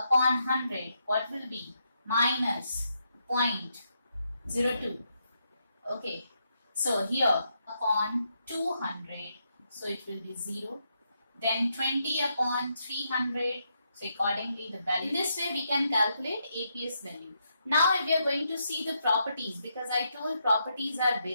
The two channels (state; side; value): inverted; both; correlation -0.80